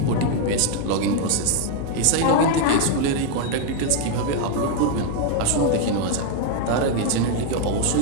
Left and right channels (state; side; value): different; both; correlation 0.01